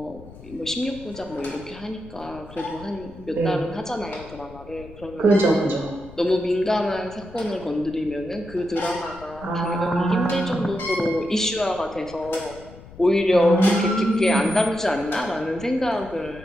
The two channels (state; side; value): noise; left; rumble, 18 dB below the sound